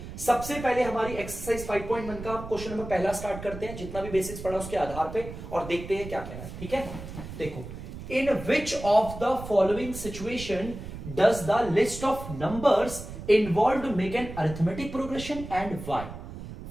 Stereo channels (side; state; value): right; noise; rumble, 11 dB below the sound